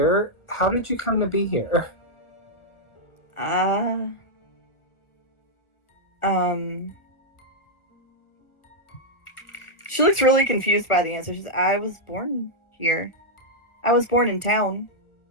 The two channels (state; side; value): late; right; 1.4 ms